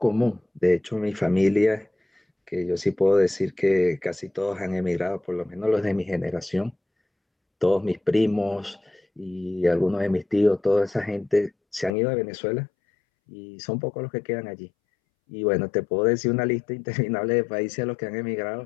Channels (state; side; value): drops out; right; at 11.9 s